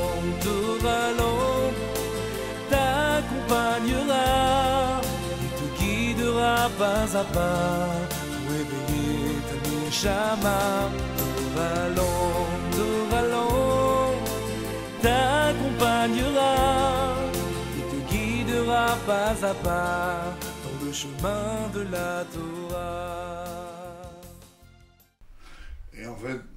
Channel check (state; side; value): identical; both; correlation 1.00